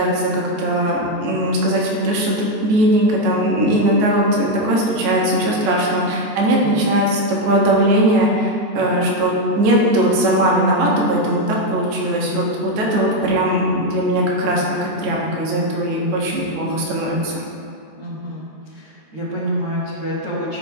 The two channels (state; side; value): late; left; 14 ms